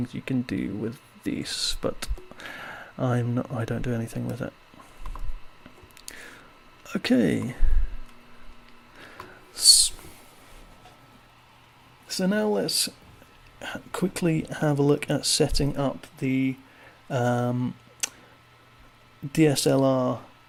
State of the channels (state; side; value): identical; both; correlation 1.00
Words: you can do with these, but I don't do anything with it. Okay. So now let's quickly have a look at setting up the DSLR